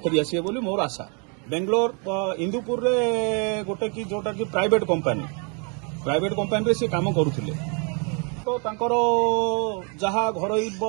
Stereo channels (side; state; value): left; quieter; 36.8 dB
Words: ଫେରିଆସିବେ ବୋଲି ମୋର ଆଶା। ବେଙ୍ଗଲୋର ଇନ୍ଦୁପୁରରେ ଗୋଟେ କି ଯୋଉଟା କି ପ୍ରାଇଭେଟ କମ୍ପାନୀରେ ସେ କାମ କରୁଥିଲେ। ତ ତାଙ୍କର ଯାହା ଘରୋଇ